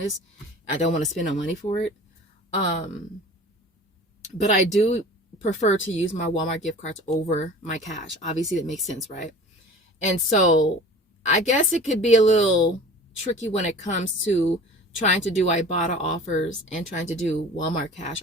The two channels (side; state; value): both; normal; correlation 0.42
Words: I don't want to spend no money for it. But I do prefer to use my Walmart gift cards over my cash. Obviously, that makes sense, right? And so I guess it could be a little tricky when it comes to trying to do Ibotta offers and trying to do Walmart cash